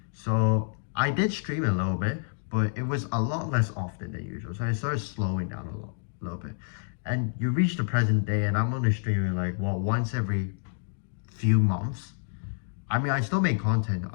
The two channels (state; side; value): silent; right; digital silence